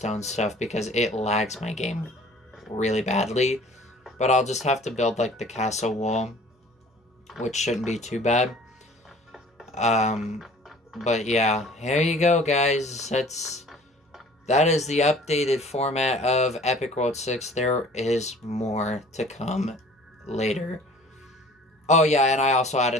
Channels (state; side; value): normal; both; correlation 0.49